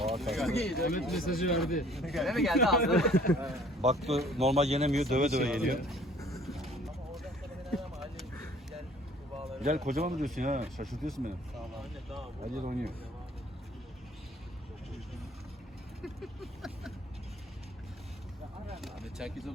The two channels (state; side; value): normal; both; correlation 0.54